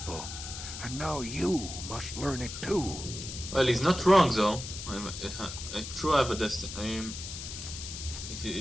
and now you must learn it too. Well, he's not wrong though. I truly have a destiny.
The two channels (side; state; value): left; noise; hiss, 8 dB below the sound